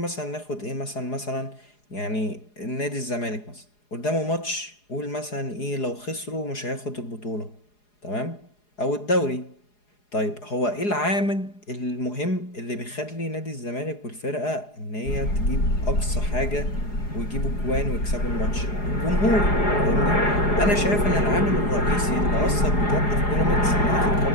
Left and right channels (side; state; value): right; late; 4.8 ms